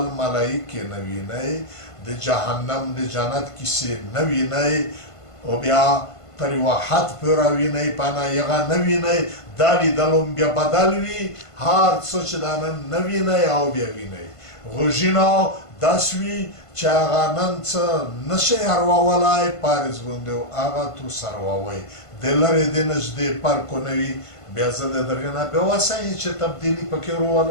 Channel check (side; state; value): right; late; 1.5 ms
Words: ملایکې نه وینئ د جهنم د جنت کیسې نه وینئ او بیا تر یوه حد پورې وینئ پانه یغه نه وینئ دا لیدل هم بیا بدل وي هر څه چې دا نن نه وینئ او بیا وینئ غوږونه داسې وي چې هغه نن څه نشئ ارواولی پارز باندې هغه تو سرووئ د لرې د نږدې فرق نه وي بیا زه د دغې نه بیا وسایي چې تبدیلي پکې